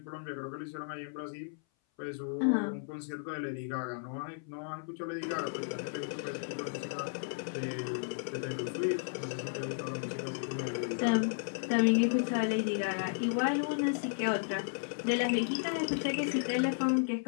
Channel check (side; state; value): right; silent; 55 dB below the other